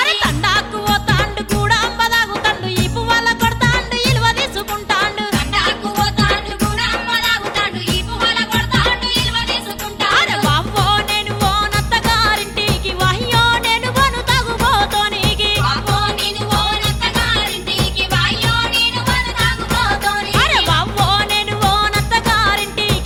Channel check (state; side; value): identical; both; correlation 1.00